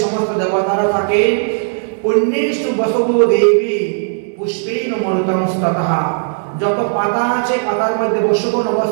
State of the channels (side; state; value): left; silent; 69 dB below the other